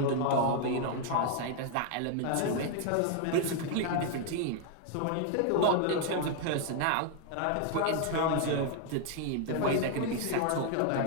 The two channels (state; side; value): different; both; correlation 0.00